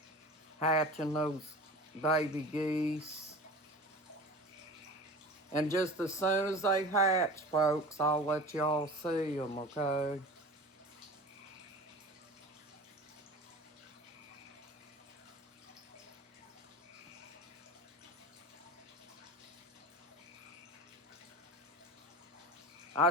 hatching those baby geese. And just as soon as they hatch, folks, I'll let y'all see them, okay? I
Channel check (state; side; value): normal; both; correlation 0.36